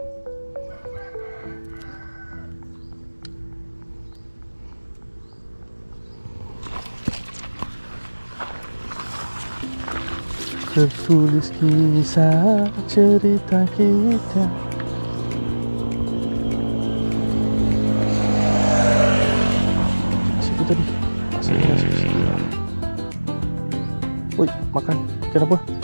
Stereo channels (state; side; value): inverted; both; correlation -1.00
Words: Tertulis kisah cerita kita. Siapa tadi? Asalnya siapa? Woi, makan. Ikan apa?